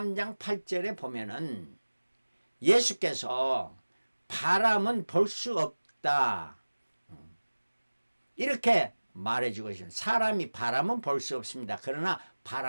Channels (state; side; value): inverted; both; correlation -1.00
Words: 8절에 보면은 예수께서 바람은 볼 수 없다 이렇게 말해주고 있습니다. 사람이 바람은 볼 수 없습니다. 그러나